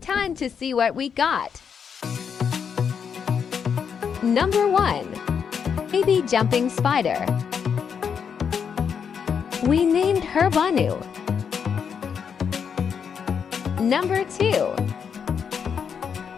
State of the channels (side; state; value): right; quieter; 7.0 dB